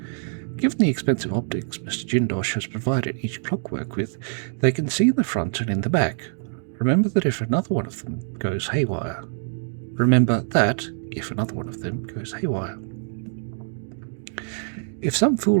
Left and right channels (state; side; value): silent; left; 62 dB below the other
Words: Given the expensive optics Mr. Jindosh has provided each Clockwork with, they can see in the front and in the back. Remember that if another one of them goes haywire. If some